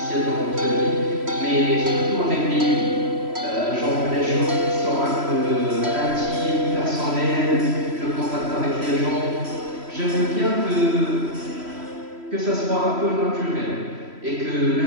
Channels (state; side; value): late; left; 3.1 ms